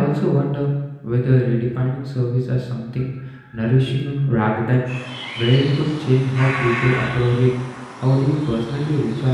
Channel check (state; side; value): identical; both; correlation 1.00